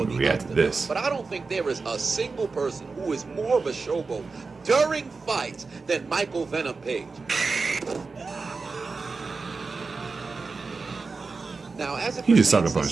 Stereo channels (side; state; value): left; quieter; 4.3 dB